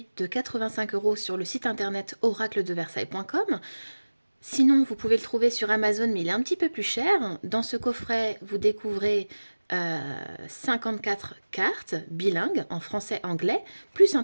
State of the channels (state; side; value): inverted; both; correlation -1.00